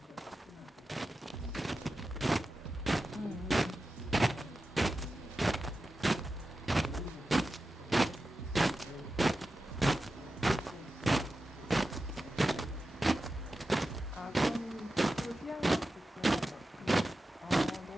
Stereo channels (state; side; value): normal; both; correlation 0.92